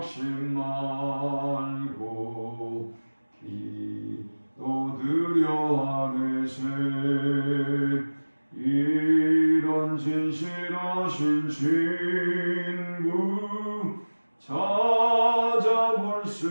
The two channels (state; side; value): inverted; both; correlation -1.00